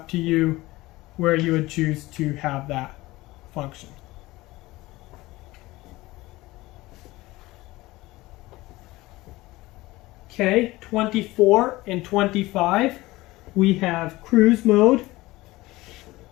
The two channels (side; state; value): right; quieter; 19.4 dB